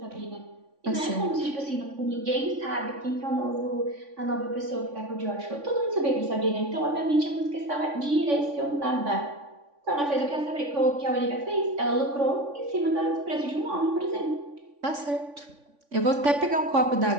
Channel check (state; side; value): late; left; 3.5 ms